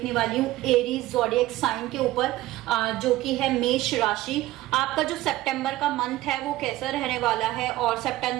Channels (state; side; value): quieter; left; 16.5 dB